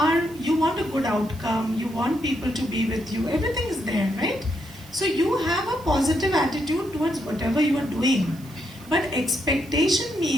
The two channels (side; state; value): right; noise; hiss, 23 dB below the sound